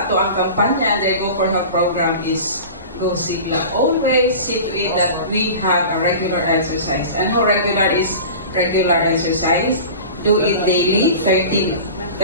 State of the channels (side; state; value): both; inverted; correlation -0.35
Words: ato ang kampanya under Go for Health program is Go Sigla. Always see to it that we have a regular exercise. And how regular is regular exercise? Do it daily, 30